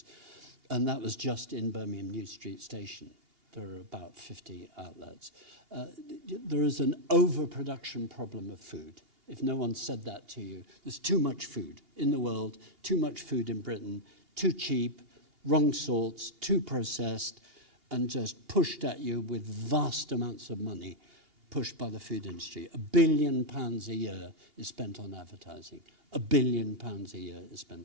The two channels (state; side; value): late; left; 2.8 ms